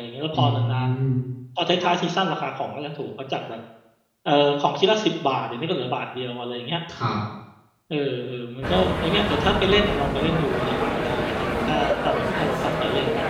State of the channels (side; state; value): both; identical; correlation 1.00